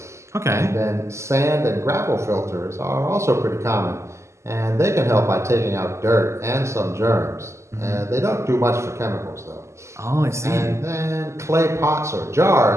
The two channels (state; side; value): late; left; 0.13 ms